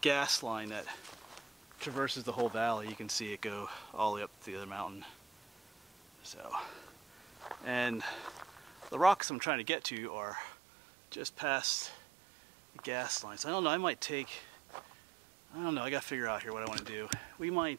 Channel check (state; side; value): drops out; left; at 9.2 s